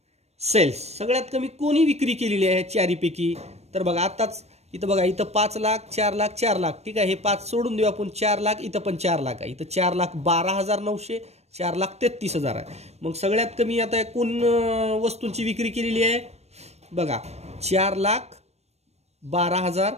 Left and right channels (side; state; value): left; late; 0.31 ms